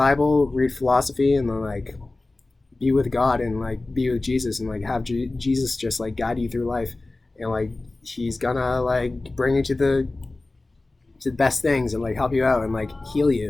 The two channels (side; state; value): right; quieter; 3.1 dB